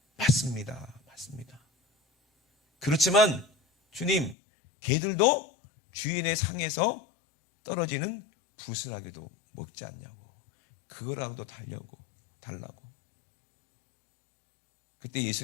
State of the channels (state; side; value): drops out; right; at 4.4 s